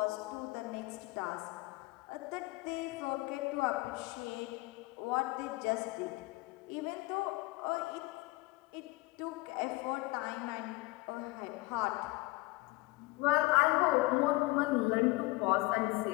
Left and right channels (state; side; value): quieter; right; 22.0 dB